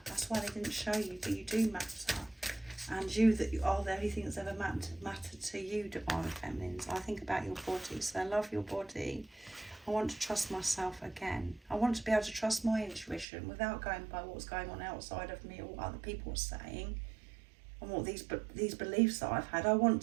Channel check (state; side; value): drops out; left; at 13.2 s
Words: That's why they didn't show you, but you do matter. And you are the only thing that's ever mattered to you, divine feminines. I think about your body, so I love your body. I want to trust myself again. I want to be able to trust my intuition without going by what's going on outside of me or what other people are saying and what these beliefs that I've had. I want